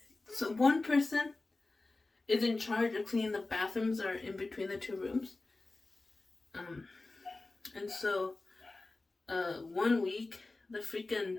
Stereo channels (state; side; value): quieter; right; 3.3 dB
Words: so one person is in charge of cleaning the bathrooms or in between the two rooms. And so 1 week the